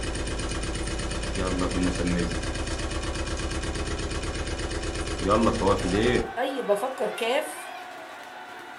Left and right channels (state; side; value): identical; both; correlation 1.00